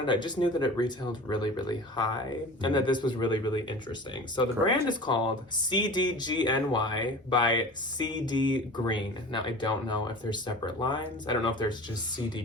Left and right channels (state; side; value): normal; both; correlation 0.37